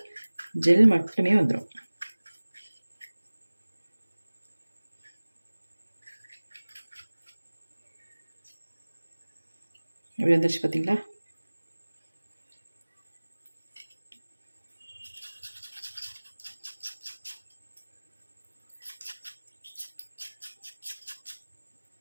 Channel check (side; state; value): both; inverted; correlation -1.00